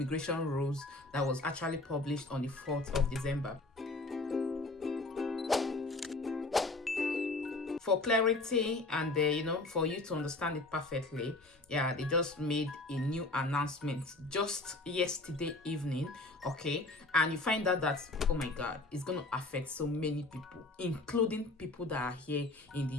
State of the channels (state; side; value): quieter; right; 3.0 dB